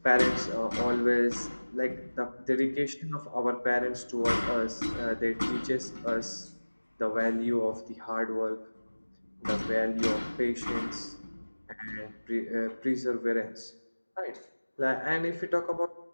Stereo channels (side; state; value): both; inverted; correlation -1.00